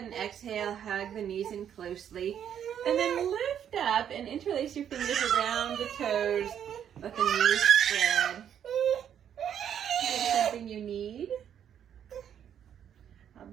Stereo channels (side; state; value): left; quieter; 9.2 dB